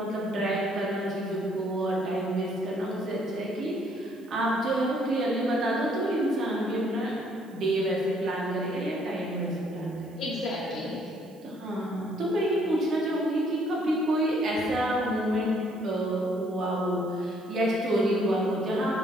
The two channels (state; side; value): noise; right; hiss, 30 dB below the sound